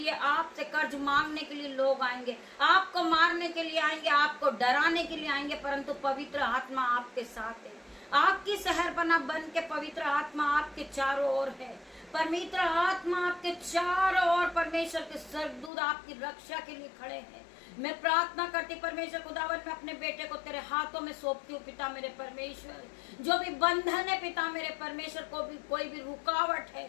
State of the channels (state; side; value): drops out; right; at 15.7 s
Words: आपसे कर्ज मांगने के लिए लोग आएंगे, आपको मारने के लिए आएंगे, आपको डराने के लिए आएंगे, परंतु पवित्र आत्मा आपके साथ है। आपकी शहरपना बन के पवित्र आत्मा आपके चारों ओर है। पवित्र आत्मा आपके चारों ओर, परमेश्वर के स्वर्गदूत आपकी रक्षा के लिए खड़े हैं। मैं प्रार्थना करती परमेश्वर खुदावन, मैं अपने बेटे को तेरे हाथों में सौंपती हूँ पिता मेरे परमेश्वर। जो भी बंधन है पिता मेरे परमेश्वर, कोई भी रुकावट